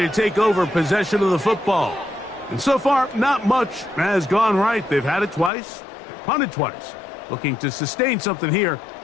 to take over possession of the football. And so far, not much has gone right. They've had it twice, they've punted twice. Looking to sustain something here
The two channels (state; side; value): drops out; right; at 5.5 s